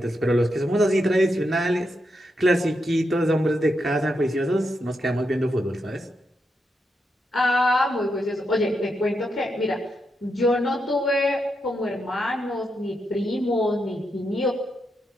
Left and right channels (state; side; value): normal; both; correlation 0.83